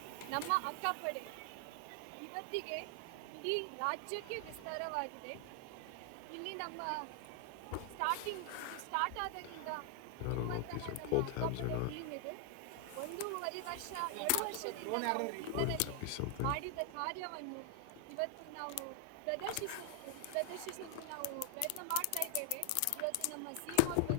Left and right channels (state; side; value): different; both; correlation 0.00